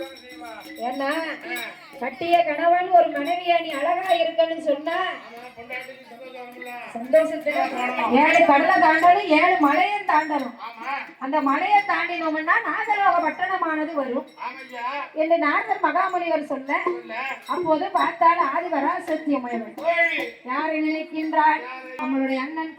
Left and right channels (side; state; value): both; identical; correlation 1.00